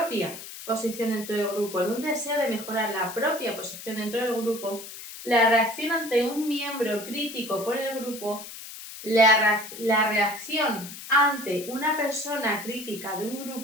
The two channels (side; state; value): left; noise; hiss, 12 dB below the sound